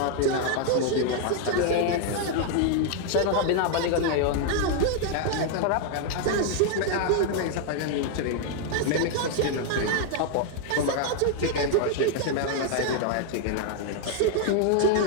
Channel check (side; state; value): both; different; correlation 0.00